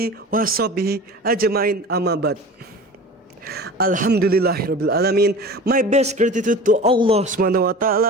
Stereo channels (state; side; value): normal; both; correlation 0.37